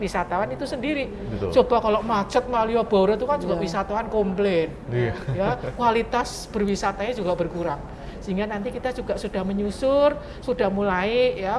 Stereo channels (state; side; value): identical; both; correlation 1.00